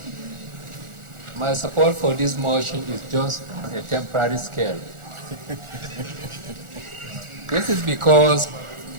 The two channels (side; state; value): left; late; 1.4 ms